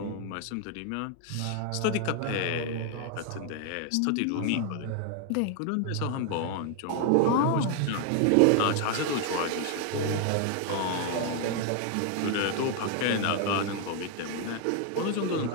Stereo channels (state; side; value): different; both; correlation 0.00